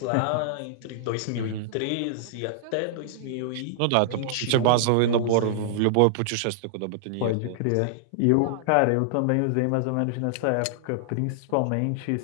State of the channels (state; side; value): different; both; correlation -0.01